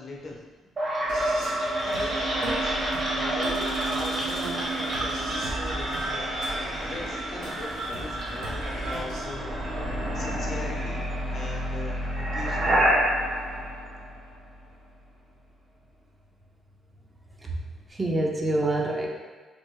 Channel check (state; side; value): normal; both; correlation 0.76